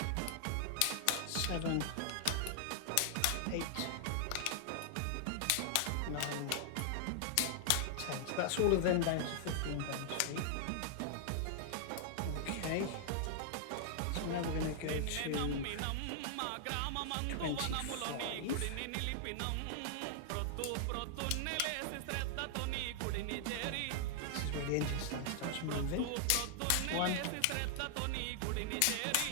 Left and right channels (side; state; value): both; different; correlation -0.01